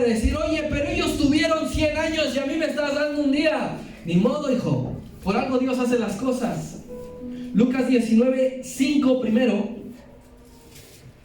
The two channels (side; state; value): both; identical; correlation 1.00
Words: decir, oye, pero ellos tuvieron 100 años y a mí me estás dando un día. Ni modo, hijo, por algo Dios hace las cosas. Lucas 19:5 primero.